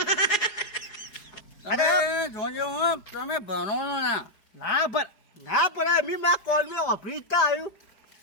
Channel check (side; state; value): right; late; 4.8 ms